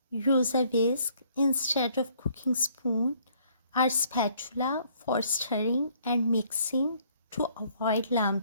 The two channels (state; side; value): inverted; both; correlation -0.64